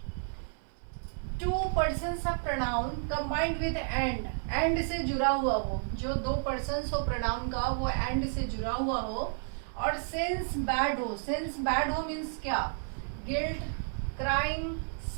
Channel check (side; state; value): left; silent; 57 dB below the other